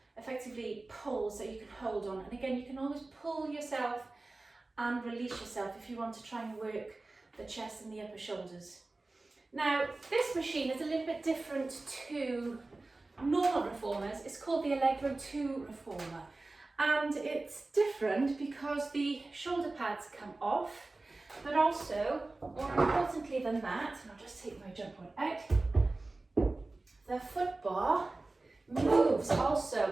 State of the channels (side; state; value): left; quieter; 3.2 dB